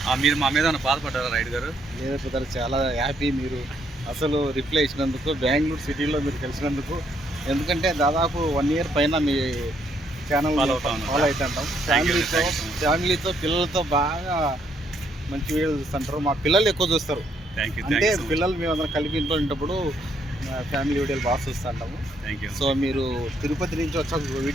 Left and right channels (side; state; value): both; normal; correlation 0.71